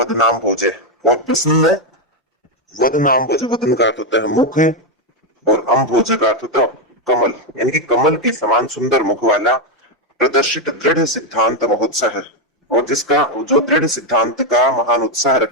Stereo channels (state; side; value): normal; both; correlation 0.04